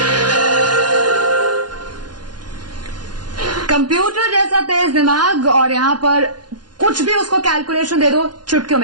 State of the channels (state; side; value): late; left; 0.70 ms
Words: कंप्यूटर जैसा तेज दिमाग और यहां पर कुछ भी उसको कैलकुलेशन दे दो चुटकियों